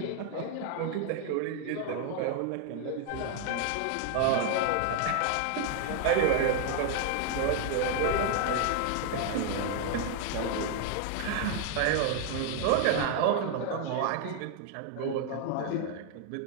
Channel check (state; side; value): different; both; correlation 0.00